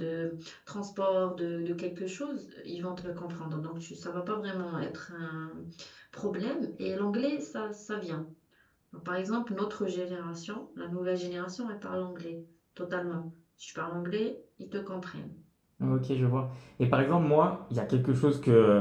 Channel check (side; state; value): both; identical; correlation 1.00